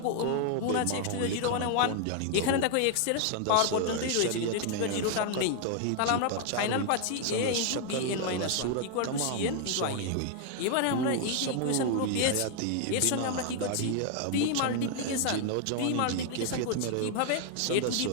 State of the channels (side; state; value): both; different; correlation 0.00